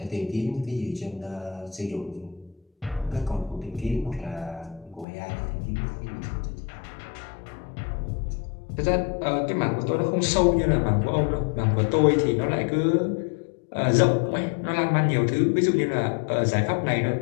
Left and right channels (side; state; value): right; drops out; at 5.1 s